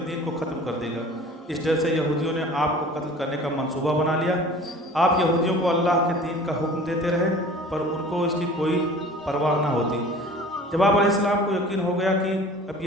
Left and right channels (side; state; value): both; normal; correlation 0.44